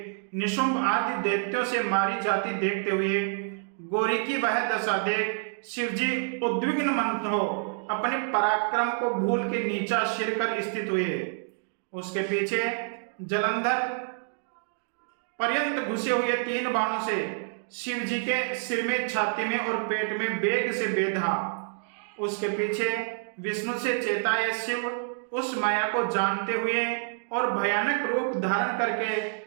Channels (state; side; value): silent; left; digital silence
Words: निशुंभ आदि दैत्यों से मारी जाती देखते हुए गोरी की वह दशा देख शिव जी उद्विग्न मन हो अपने पराक्रम को भूल के नीचा सिर कर स्थित हुए। उसके पीछे जलंधर पर्यंत घुसे हुए 3 बाणों से शिव जी के सिर में, छाती में और पेट में वेग से बेधा। उसके पीछे विष्णु से चेताए शिव उस माया को जानते हुए और भयानक रूप धारण